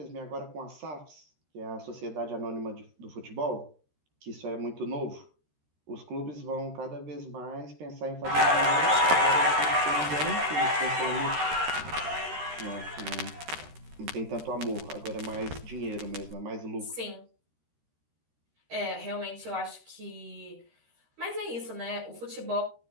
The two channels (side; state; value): left; late; 13 ms